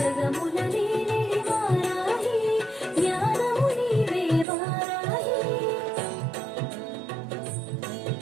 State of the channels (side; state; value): left; drops out; at 4.5 s